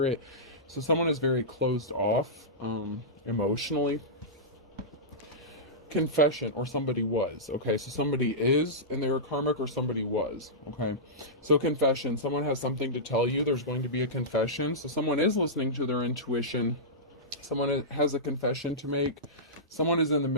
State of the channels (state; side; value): normal; both; correlation -0.15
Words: it. So someone is very closed off emotionally. Confession, or somebody was. Okay, so somebody is and they were karmic, or somebody was. Okay, so confession, someone has something to tell you. There's going to be a confession. So someone is listening to their intuition. Someone has a confession to make. Someone is in the